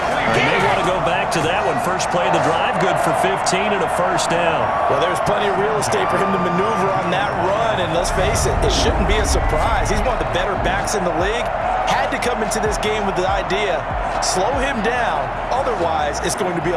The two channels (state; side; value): identical; both; correlation 1.00